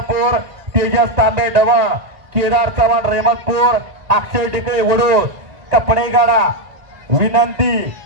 तेजस तांबे डवा केदार चव्हाण रेहमतपूर अक्षय टिकळे वडूर कपडे गाडा विनंती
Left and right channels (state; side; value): late; left; 1.9 ms